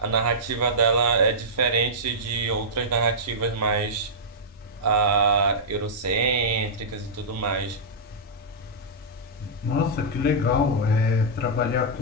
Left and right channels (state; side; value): normal; both; correlation -0.12